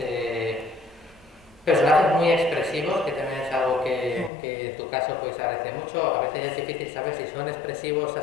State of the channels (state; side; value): drops out; right; at 4.3 s